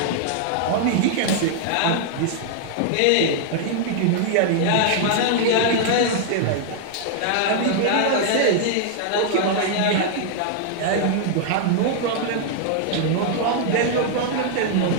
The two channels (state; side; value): different; both; correlation -0.01